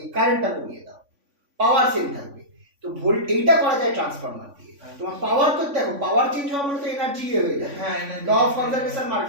কারেন্টটা কমিয়ে দাও, পাওয়ার সেম থাকবে। তো এইটা করা যায় ট্রান্সফরমার দিয়ে। তোমার পাওয়ার তো দেখো পাওয়ার চেঞ্জ হওয়া মানে তো এনার্জি হয়ে যাবে, হ্যাঁ ল অফ কনজারভেশন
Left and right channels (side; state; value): left; late; 3.5 ms